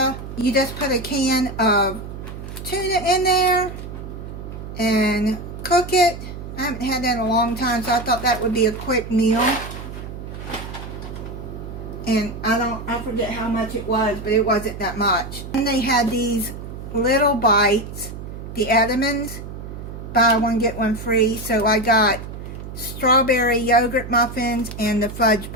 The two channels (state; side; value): noise; right; hum, 10 dB below the sound